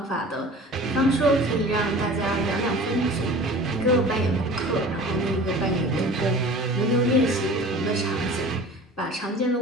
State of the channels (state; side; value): normal; both; correlation 0.41